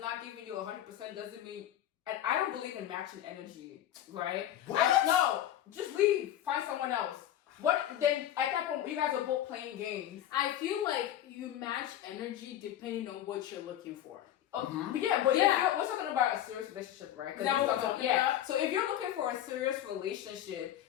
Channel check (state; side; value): quieter; right; 11.8 dB